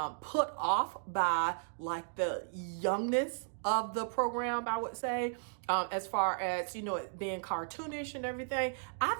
put off by like the youngness of the program, I would say, as far as, you know, it being cartoonish and everything, I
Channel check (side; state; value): left; silent; digital silence